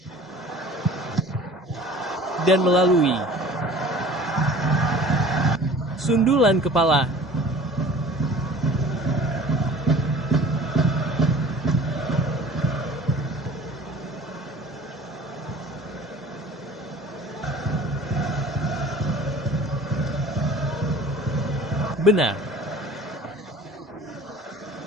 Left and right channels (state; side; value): normal; both; correlation 0.45